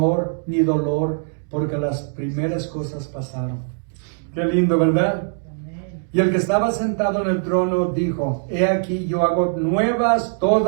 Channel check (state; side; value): silent; left; digital silence